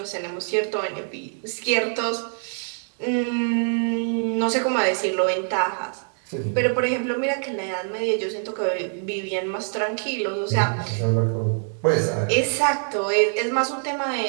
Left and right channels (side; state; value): left; silent; 56 dB below the other